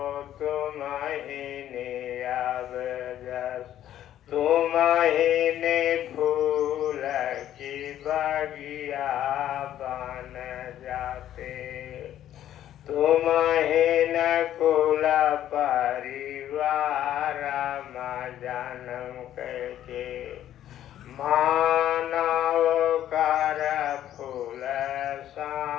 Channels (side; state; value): right; quieter; 11.8 dB